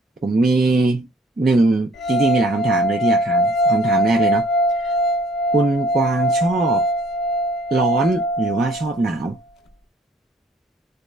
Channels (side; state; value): both; normal; correlation 0.58